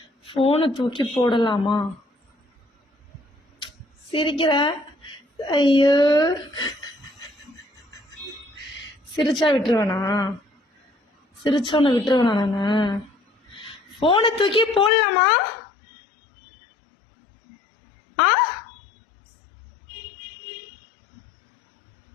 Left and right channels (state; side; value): drops out; right; at 14.9 s